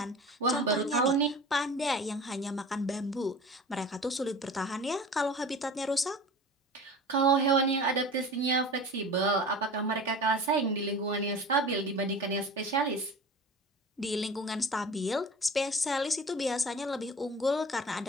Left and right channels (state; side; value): normal; both; correlation 0.38